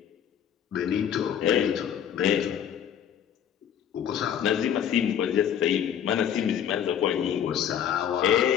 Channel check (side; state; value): right; quieter; 9.2 dB